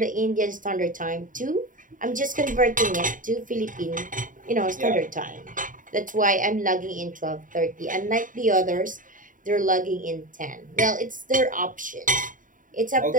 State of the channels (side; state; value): left; late; 0.39 ms